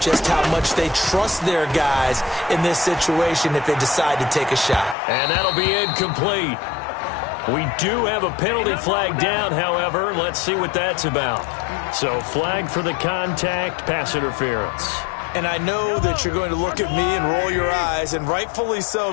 just how much they trust their guys in this situation if they decide to take a shot. And that'll be incomplete. We do have a penalty flag down, however. Let's see what that's about. So flag for the contact, pass interference. And I know that you're going to look at me and roll your eyes, and rightfully so,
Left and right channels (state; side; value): drops out; right; at 5.0 s